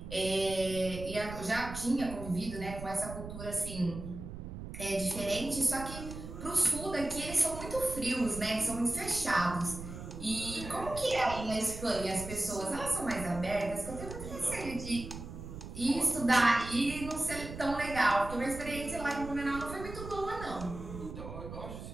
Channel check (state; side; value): noise; right; rumble, 10 dB below the sound